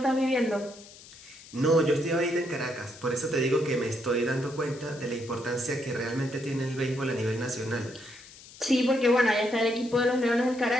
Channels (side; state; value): left; noise; hiss, 20 dB below the sound